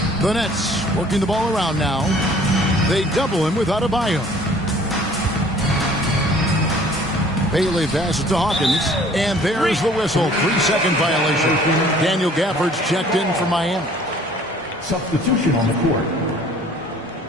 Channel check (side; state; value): both; normal; correlation 0.53